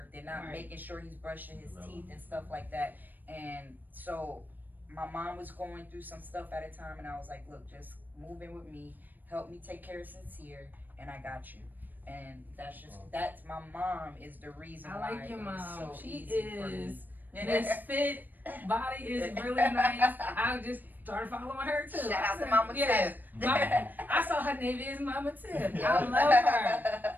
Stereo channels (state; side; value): late; left; 0.088 ms